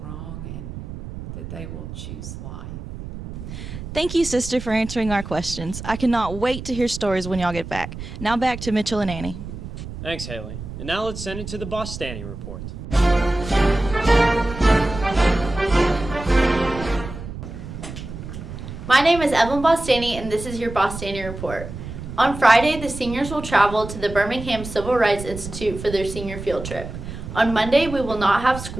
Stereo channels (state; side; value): noise; right; rumble, 10 dB below the sound